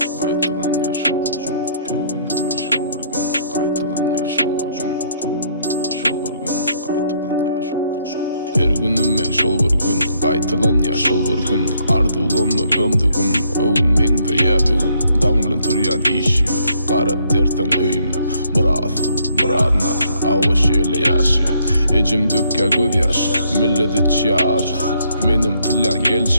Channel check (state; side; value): inverted; both; correlation -0.69